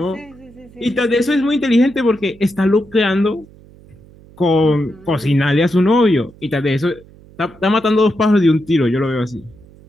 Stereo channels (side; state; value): right; noise; hum, 24 dB below the sound